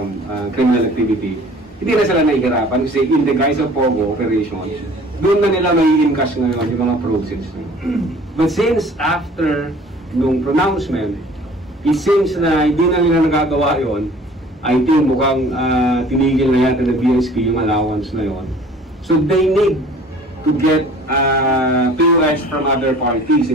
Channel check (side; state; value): both; normal; correlation 0.49